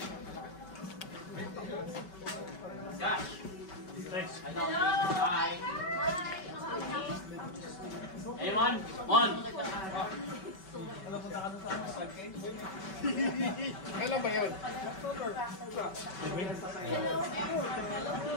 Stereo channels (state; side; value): late; right; 5.3 ms